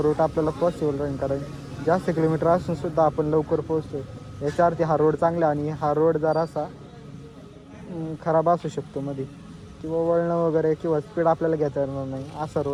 रूट आपल्याला पॉसिबल राहील, कारण जास्त किलोमीटर असून सुद्धा आपण लवकर पोहोचतो. याच्यावरती हा रोड चांगला, आणि हा रोड जरासा खराब असू शकतो मध्ये, किंवा वळणं वगैरे किंवा स्पीड आपल्याला घेता येणार नाही असा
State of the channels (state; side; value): identical; both; correlation 1.00